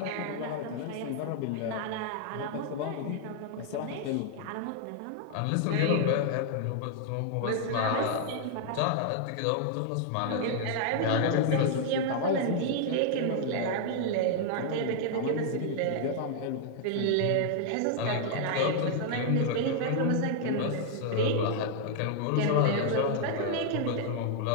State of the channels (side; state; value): both; different; correlation 0.00